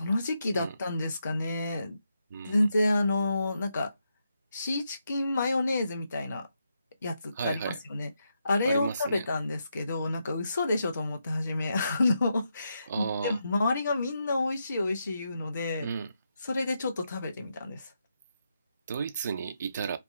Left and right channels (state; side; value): inverted; both; correlation -0.83